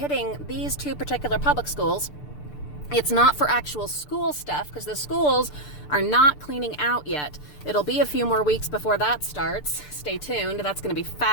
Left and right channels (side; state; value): right; late; 6.8 ms